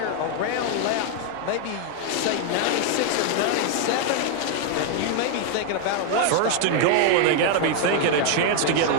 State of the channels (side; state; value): both; different; correlation 0.00